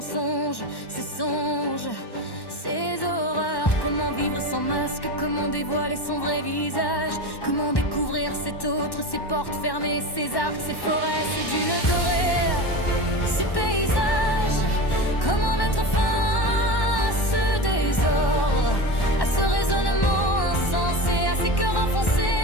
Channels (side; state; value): right; late; 1.1 ms